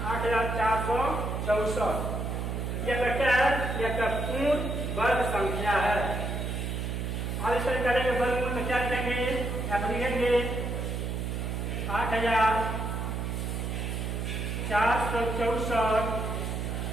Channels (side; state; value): right; noise; hum, 2 dB below the sound